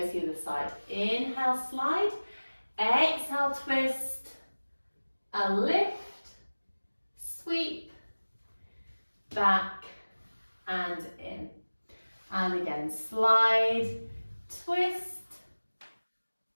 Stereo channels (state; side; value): inverted; both; correlation -1.00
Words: to the other side. Inhale, slide, exhale, twist, and lift, sweep, back, and in. And again, slide, twist,